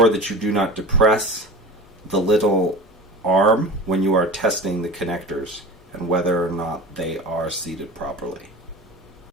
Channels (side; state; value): both; normal; correlation 0.33